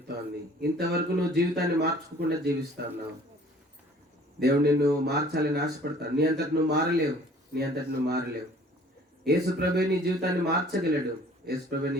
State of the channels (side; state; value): both; normal; correlation 0.52